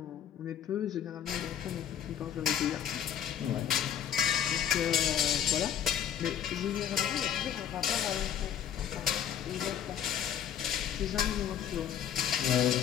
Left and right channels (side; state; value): right; quieter; 9.4 dB